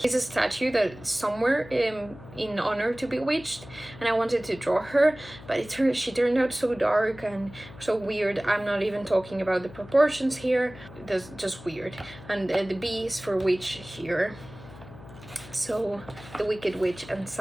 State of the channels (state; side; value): noise; left; hum, 18 dB below the sound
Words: a statue that somewhere in honor to Bewitched, and I wanted to draw her, but she turned out so dark and so weird. I'm not even talking about the proportions here, that's just weird. And the B is for witch here. So the Wicked Witch and